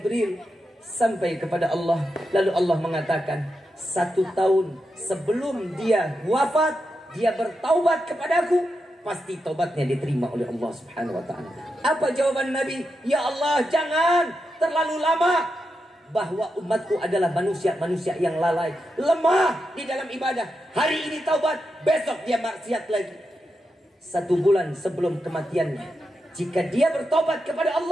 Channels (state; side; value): normal; both; correlation 0.87